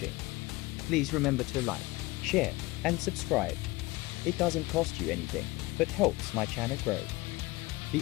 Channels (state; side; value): quieter; right; 21.1 dB